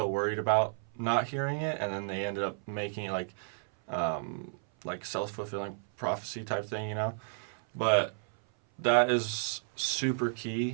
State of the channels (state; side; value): silent; left; 56 dB below the other